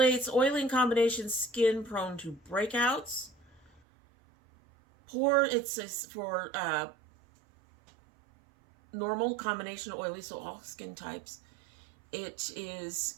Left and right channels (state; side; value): drops out; left; at 3.8 s